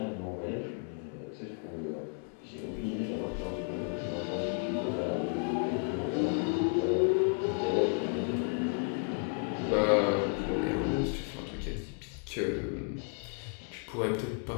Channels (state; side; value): quieter; right; 39.5 dB